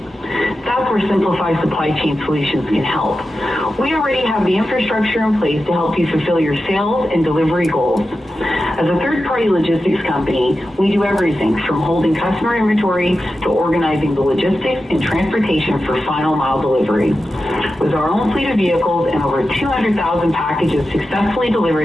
That's where Simplify Supply Chain Solutions can help. We already have the infrastructure in place to help you fulfill your sales and delivery goals. As a third-party logistics company, we do everything from holding customer inventory to organizing the logistics and transportation for final mile delivery. With our own fleet of vehicles and over 200,000 packages successfully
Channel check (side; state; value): both; normal; correlation 0.91